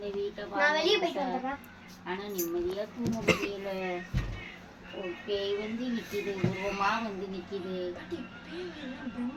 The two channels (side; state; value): both; identical; correlation 1.00